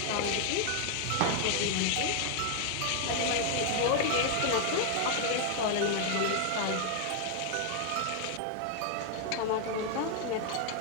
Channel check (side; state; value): both; different; correlation 0.00